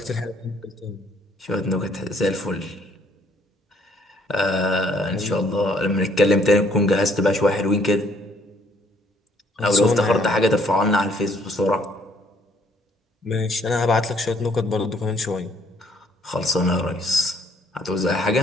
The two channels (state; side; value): normal; both; correlation 0.64